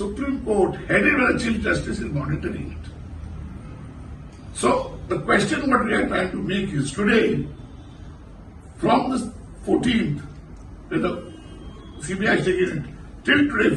Court, headed by the Chief Justice, is monitoring it. So the question what we are trying to make is today, from the 14th, when the CBI is taking it, till today,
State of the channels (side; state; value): both; identical; correlation 1.00